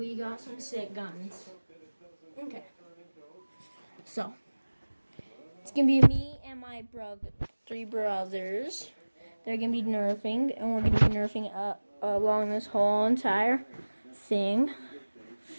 got some sick guns. Okay. So, it's going to be me and my three brothers. They're going to be nerfing, and we're going to be nerfing along this whole entire thing.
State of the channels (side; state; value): both; inverted; correlation -1.00